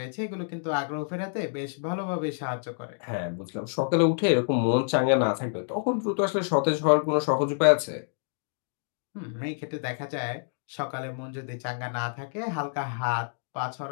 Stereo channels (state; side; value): silent; right; digital silence